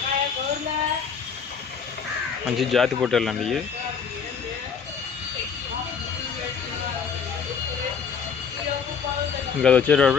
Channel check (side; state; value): right; quieter; 6.3 dB